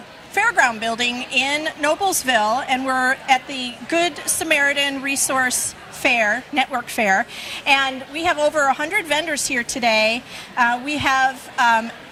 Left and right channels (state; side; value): identical; both; correlation 1.00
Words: Building in Noblesville, and we're at the Good Samaritan Resource Fair, Network Fair, and we have over 100 vendors here today. We have